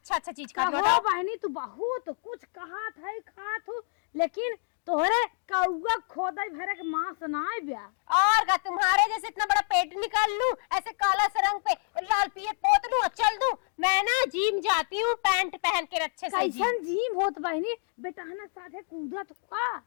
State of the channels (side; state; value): right; silent; 59 dB below the other